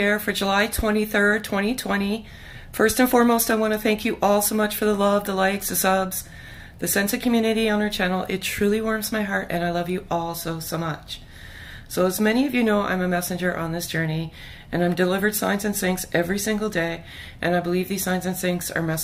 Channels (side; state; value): both; identical; correlation 1.00